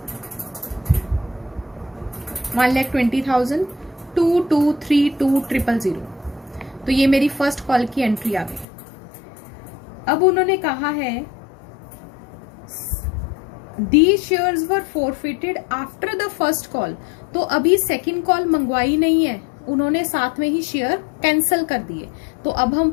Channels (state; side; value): drops out; right; at 8.7 s